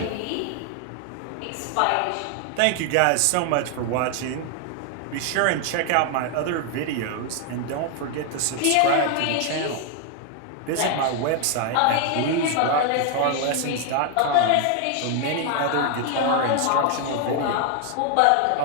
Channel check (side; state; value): both; different; correlation 0.00